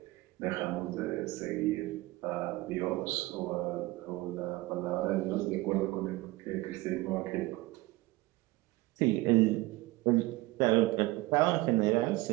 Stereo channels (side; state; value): left; quieter; 19.8 dB